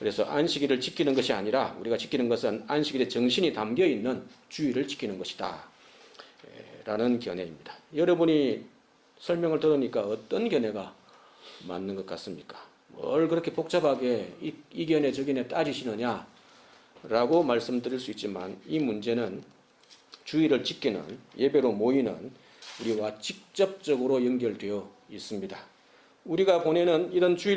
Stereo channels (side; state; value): both; identical; correlation 1.00